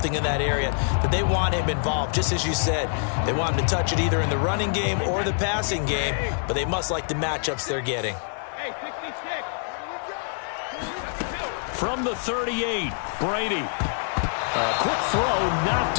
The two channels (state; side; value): silent; right; digital silence